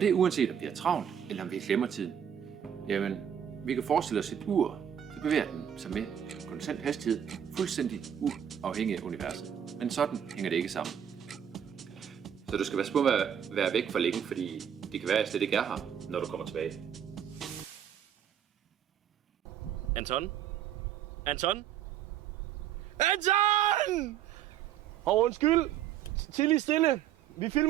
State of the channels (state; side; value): quieter; left; 9.4 dB